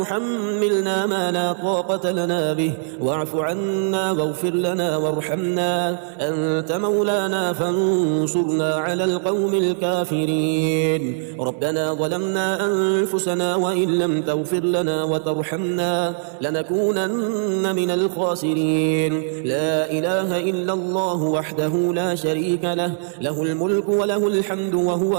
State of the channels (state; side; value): silent; left; 61 dB below the other